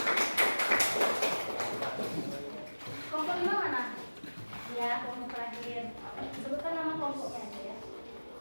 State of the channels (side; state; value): both; inverted; correlation -1.00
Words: Kelompok 5 mana? Ya, kelompok terakhir. Sebutkan nama kelompoknya aja ya.